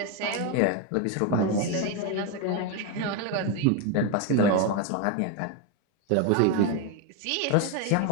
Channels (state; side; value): different; both; correlation 0.02